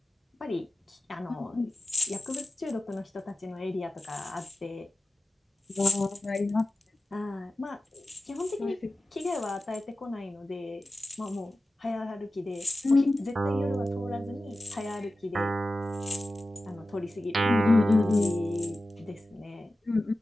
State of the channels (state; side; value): normal; both; correlation 0.94